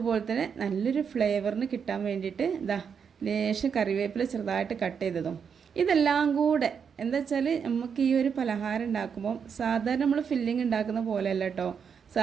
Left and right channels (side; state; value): left; quieter; 6.8 dB